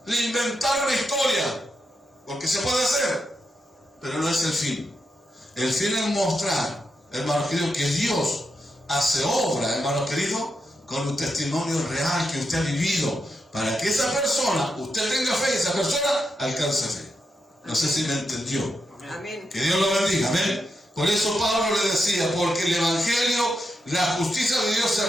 Le inventara una historia. Porque se puede hacer. Pero no es el fin. El fin es mostrar hermano querido, que Dios hace obra, hermano querido, con un testimonio real que usted ha vivido, para que esa persona, usted tenga fe y esa persona alcance fe. No sé si me entendió. Amén. Que Dios lo bendiga, amén. Por eso Pablo le decía, porque el Evangelio, la justicia de Dios se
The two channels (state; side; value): normal; both; correlation 0.84